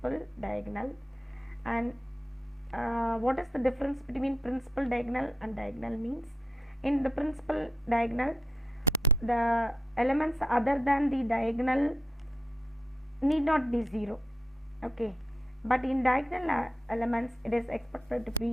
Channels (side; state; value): both; normal; correlation 0.80